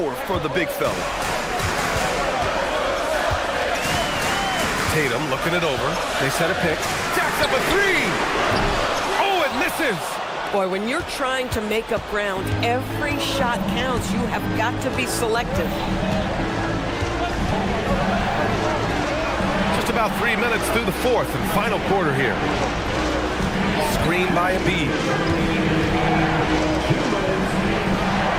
for the big fella. Tatum looking it over. They set a pick. Jacks up a 3. Oh, it misses. Boy, when you're trying to make up ground, every shot counts. You have got to be selective. Just about 3 minutes through the fourth and final quarter here. Screen by Embiid.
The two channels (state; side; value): identical; both; correlation 1.00